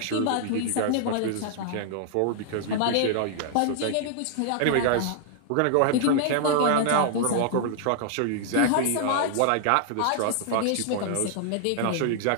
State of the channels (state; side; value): different; both; correlation 0.00